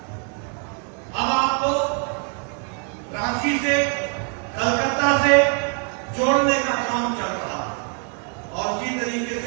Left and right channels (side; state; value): left; quieter; 39.6 dB